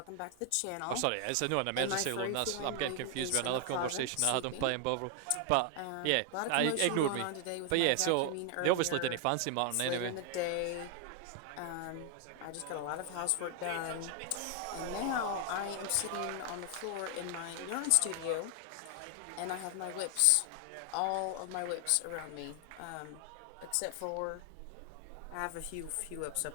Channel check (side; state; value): both; different; correlation 0.00